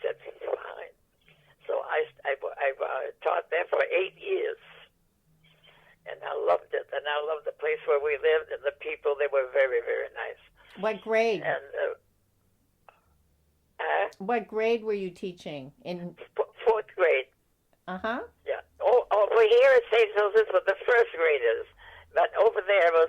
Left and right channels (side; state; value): both; identical; correlation 1.00